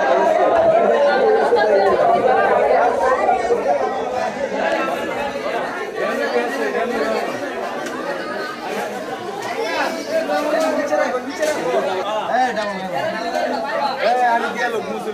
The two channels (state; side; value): identical; both; correlation 1.00